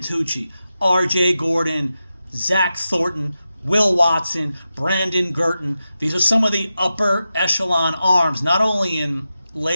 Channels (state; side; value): inverted; both; correlation -0.91